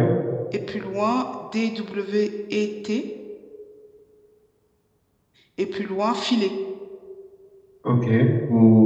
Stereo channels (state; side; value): identical; both; correlation 1.00